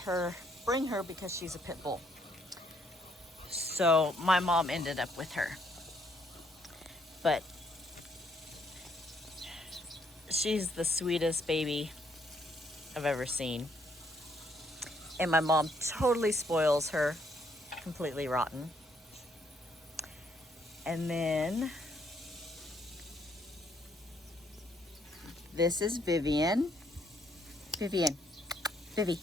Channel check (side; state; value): both; normal; correlation 0.70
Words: bring her because she's a pit bull. So my mom ended up with her. But she's the sweetest baby I've ever seen. And my mom totally spoils her, completely rotten. And then this is Vivian. Vivi.